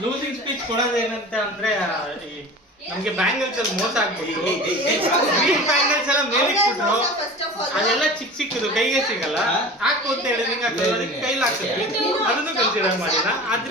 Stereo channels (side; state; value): both; normal; correlation 0.37